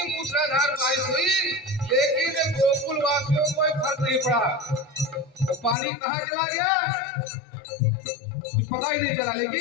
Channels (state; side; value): drops out; right; at 5.8 s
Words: मूसलाधार बारिश हुई, लेकिन गोकुल वासियों को कोई फर्क नहीं पड़ा। वो पानी कहाँ चला गया कुछ पता ही नहीं चला,